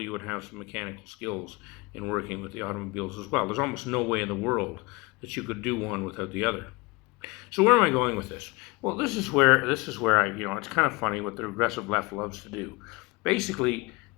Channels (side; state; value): right; quieter; 25.1 dB